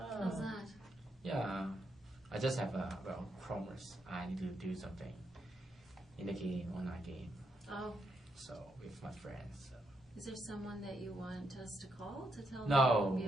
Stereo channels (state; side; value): normal; both; correlation 0.80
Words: that? Yeah, I just have a promise. I need to do something in the game, online game. Oh, So with my friends. So. is there someone that you want us to call to tell them No, to be